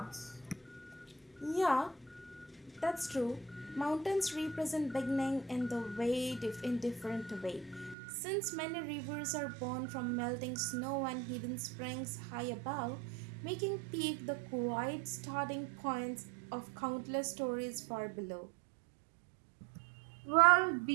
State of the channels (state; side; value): drops out; left; at 8.0 s